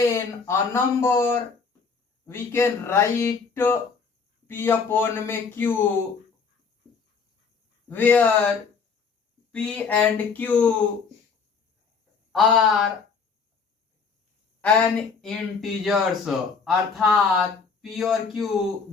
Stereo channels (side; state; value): right; quieter; 5.3 dB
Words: a number we can write p upon में q where p and q are an integers, अर्थात p और q